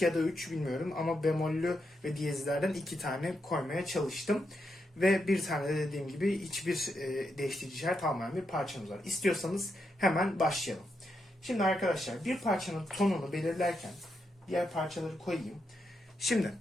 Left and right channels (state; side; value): normal; both; correlation 0.83